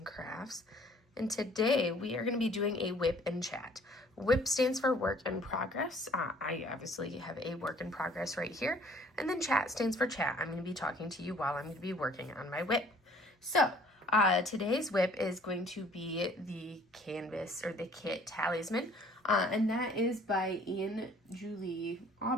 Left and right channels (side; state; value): both; normal; correlation 0.56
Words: Crafts, and today we are going to be doing a WIP and chat. WIP stands for work in progress. I obviously have a work in progress right here, and then chat stands for chat. I'm going to be talking to you while I'm going to be working on my WIP. So today's WIP is going to be the canvas or the kit talisman, and that is by Ian Julie